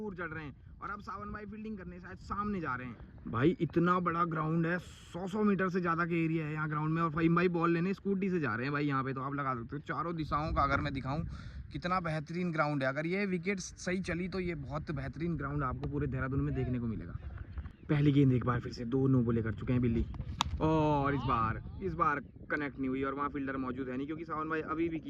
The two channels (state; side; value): identical; both; correlation 1.00